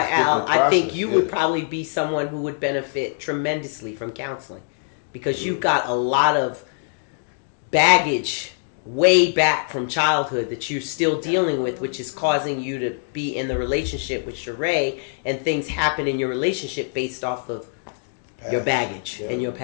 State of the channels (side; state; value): right; silent; digital silence